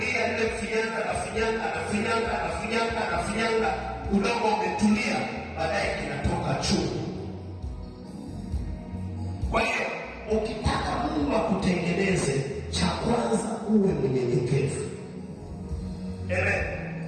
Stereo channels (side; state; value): both; identical; correlation 1.00